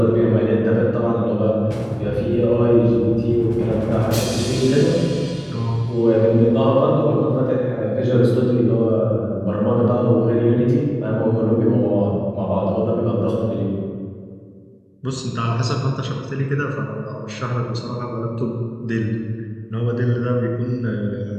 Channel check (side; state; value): both; identical; correlation 1.00